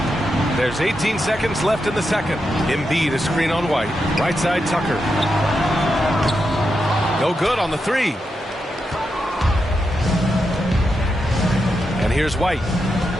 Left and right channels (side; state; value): both; normal; correlation 0.86